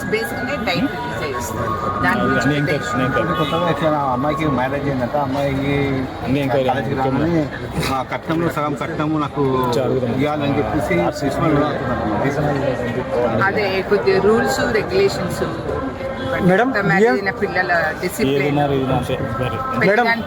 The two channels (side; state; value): both; identical; correlation 1.00